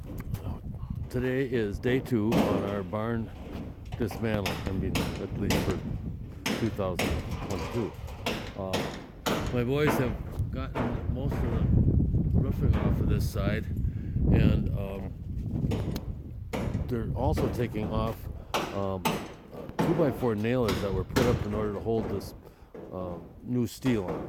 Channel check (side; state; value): both; identical; correlation 1.00